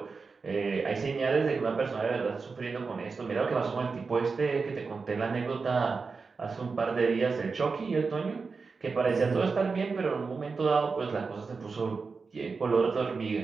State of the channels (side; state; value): left; quieter; 4.7 dB